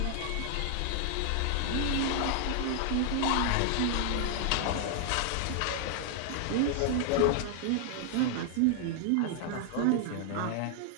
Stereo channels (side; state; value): both; different; correlation 0.00